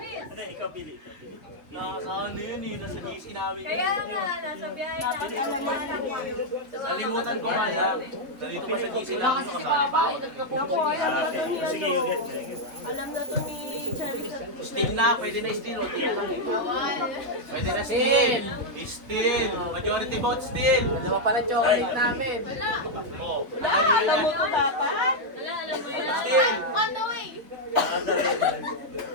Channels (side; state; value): left; late; 3.8 ms